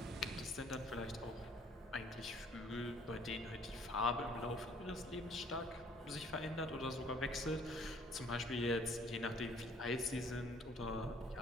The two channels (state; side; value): normal; both; correlation 0.58